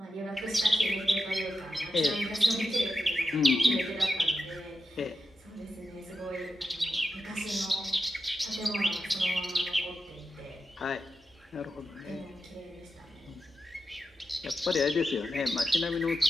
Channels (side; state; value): both; normal; correlation 0.89